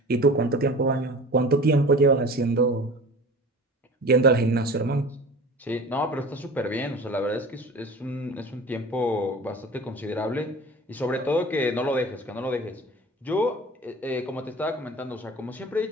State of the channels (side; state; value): both; normal; correlation 0.39